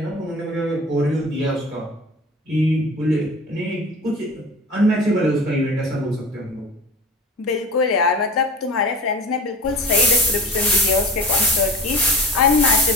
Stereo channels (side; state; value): both; normal; correlation 0.38